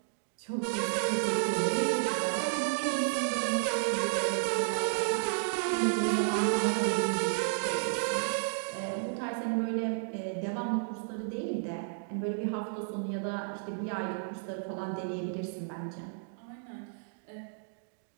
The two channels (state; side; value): silent; left; digital silence